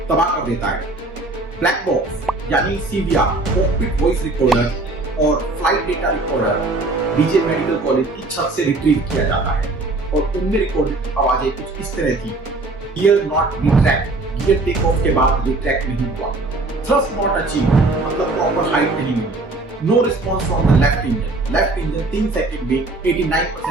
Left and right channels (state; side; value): quieter; left; 3.1 dB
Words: तबाह कर देता है। ब्लैक बॉक्स यानी CVR, कॉकपिट वॉइस रिकॉर्डर और flight data recorder BJ medical college की छत से रिट्रीव किया जाता है और उनमें रिकॉर्डेड आवाजें कुछ इस तरह थी: gear not retract, gear takeoff के बाद रिट्रैक्ट नहीं हुआ, थ्रस्ट नॉट अचीव मतलब प्रॉपर हाइट नहीं मिली, no response from the left engine 3 second में